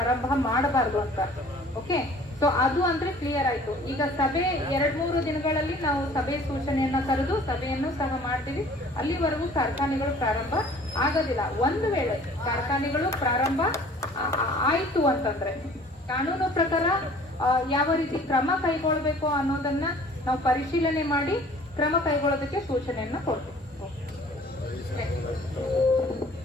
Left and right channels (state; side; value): normal; both; correlation 0.51